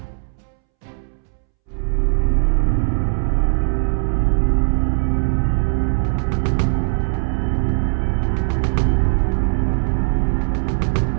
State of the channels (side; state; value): left; silent; 66 dB below the other